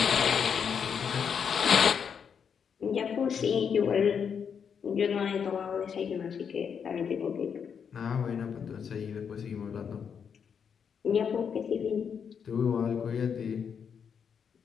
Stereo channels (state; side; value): quieter; right; 7.0 dB